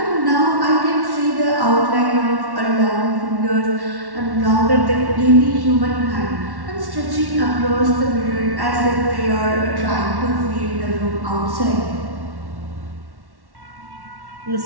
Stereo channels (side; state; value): left; late; 1.1 ms